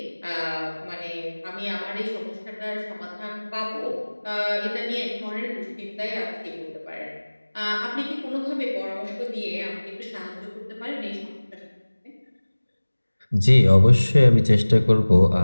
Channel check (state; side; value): inverted; both; correlation -1.00